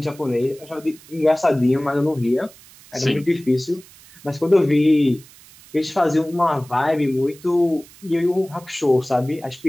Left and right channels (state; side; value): noise; right; hiss, 23 dB below the sound